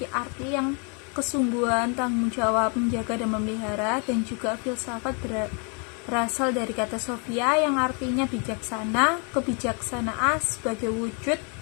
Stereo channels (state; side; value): quieter; right; 36.7 dB